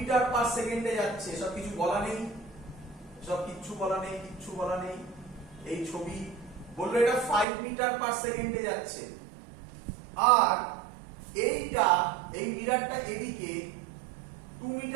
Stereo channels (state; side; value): drops out; left; at 7.5 s